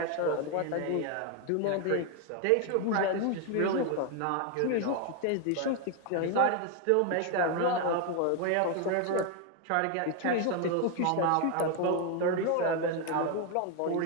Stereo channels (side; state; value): both; different; correlation 0.01